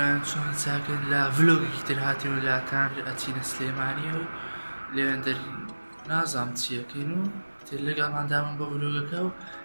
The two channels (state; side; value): inverted; both; correlation -1.00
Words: چۆن چاکن لە ڤلۆگێکی تر هاتیەوە لاتان ئەچینە سلێمانی و لێوێن دەری نازام چیەکەین و تر لەگەڵماندامن بۆ ڤلۆگەکە و